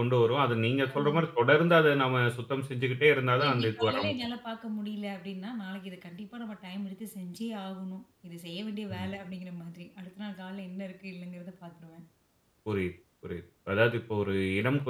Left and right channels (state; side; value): identical; both; correlation 1.00